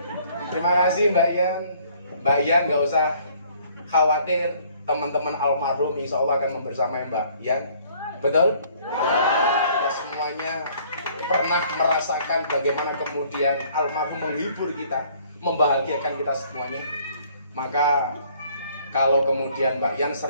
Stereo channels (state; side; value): inverted; both; correlation -0.59